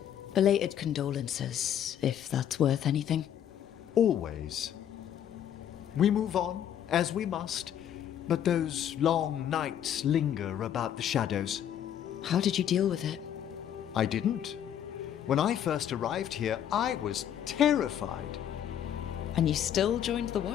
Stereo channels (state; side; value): quieter; right; 9.9 dB